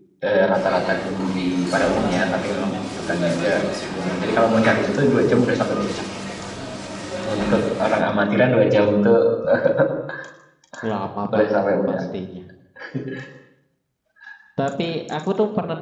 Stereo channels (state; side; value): identical; both; correlation 1.00